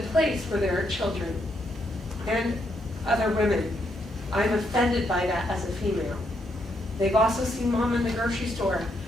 where there are children and other women. I'm offended by that as a female. They've also seen mom in the grocery store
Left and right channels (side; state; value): both; normal; correlation 0.77